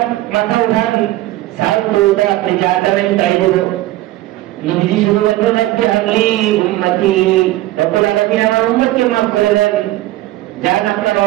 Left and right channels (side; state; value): left; quieter; 16.5 dB